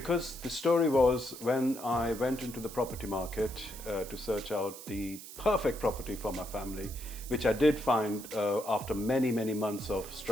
the story was when I went into the property market to search out the perfect property for my family, which I did find after many, many months of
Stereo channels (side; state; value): right; noise; hiss, 13 dB below the sound